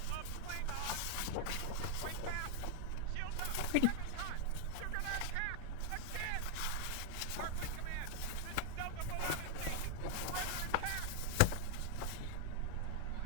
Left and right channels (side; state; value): both; different; correlation 0.00